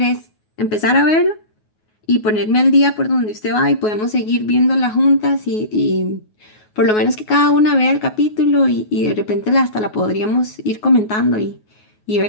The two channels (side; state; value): right; late; 9.4 ms